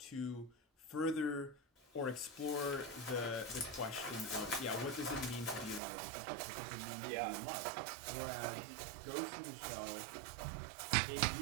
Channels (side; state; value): left; drops out; at 5.8 s